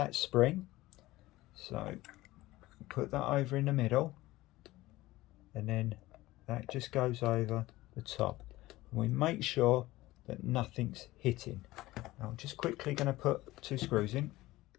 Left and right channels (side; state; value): right; quieter; 18.0 dB